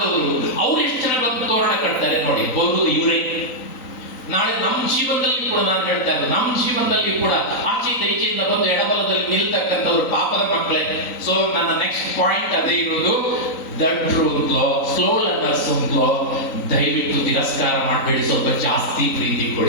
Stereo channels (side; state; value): right; late; 3.9 ms